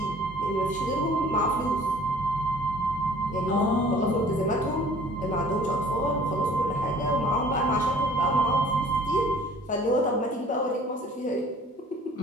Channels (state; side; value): normal; both; correlation 0.51